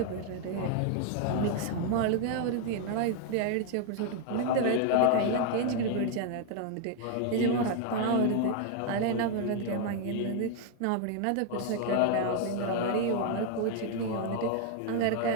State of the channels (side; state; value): both; different; correlation 0.00